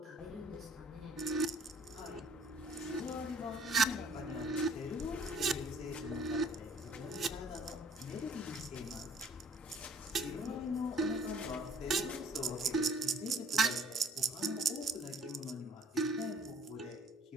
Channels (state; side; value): normal; both; correlation 0.57